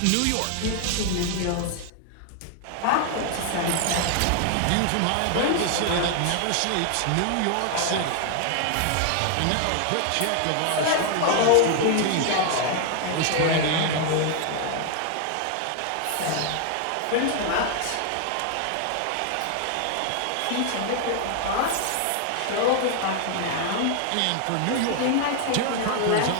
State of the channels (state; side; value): different; both; correlation 0.00